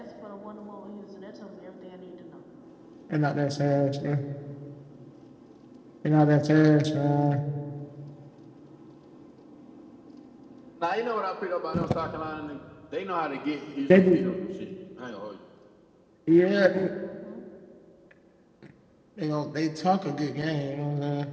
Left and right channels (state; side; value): identical; both; correlation 1.00